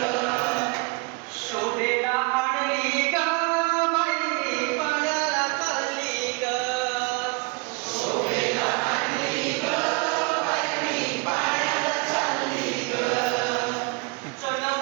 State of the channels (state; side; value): quieter; left; 29.6 dB